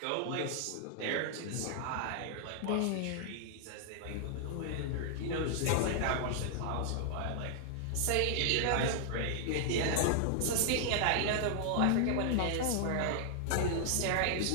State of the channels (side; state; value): both; different; correlation -0.01